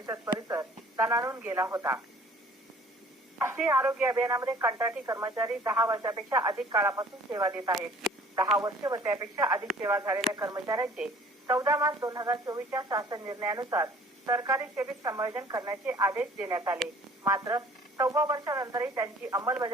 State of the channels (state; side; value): normal; both; correlation 0.52